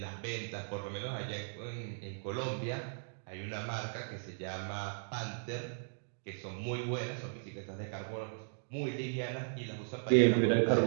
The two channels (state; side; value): silent; left; digital silence